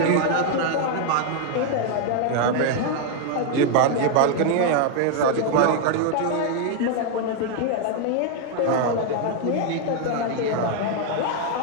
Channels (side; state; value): both; different; correlation 0.01